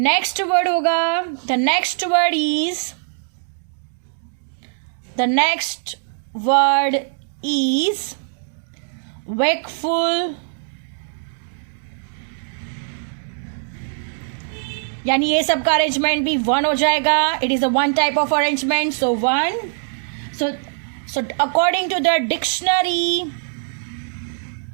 word होगा, the next word is wakeful. यानी ये सब का arrangement भी वन हो जाएगा. It is a one type of arrangement. So one. So according to the dictionary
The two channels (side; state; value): left; silent; 65 dB below the other